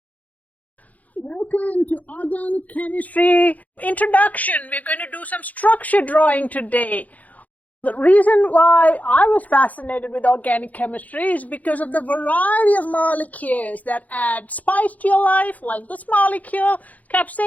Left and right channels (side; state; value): right; late; 0.076 ms